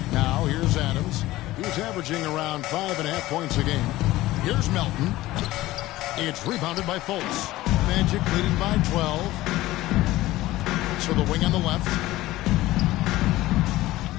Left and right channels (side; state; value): right; quieter; 17.1 dB